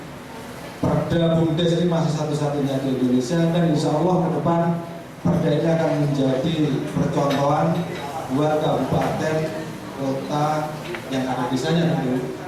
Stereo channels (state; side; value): identical; both; correlation 1.00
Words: Perda BUMDes ini masih satu-satunya di Indonesia, dan insya Allah ke depan perda ini akan menjadi percontohan buat kabupaten, kota yang ada desanya nanti